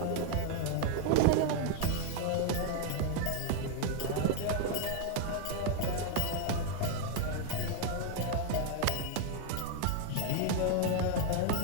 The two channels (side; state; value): both; different; correlation 0.01